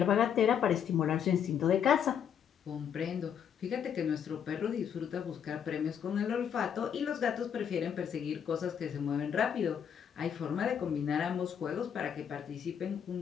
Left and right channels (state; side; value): quieter; right; 8.3 dB